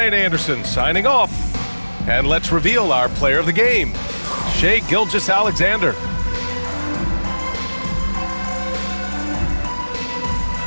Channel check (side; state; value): both; inverted; correlation -1.00